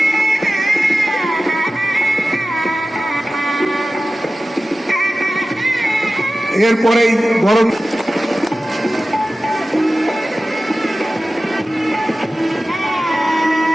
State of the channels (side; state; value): both; normal; correlation 0.95